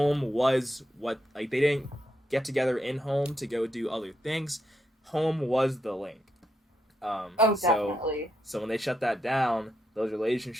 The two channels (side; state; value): both; normal; correlation 0.81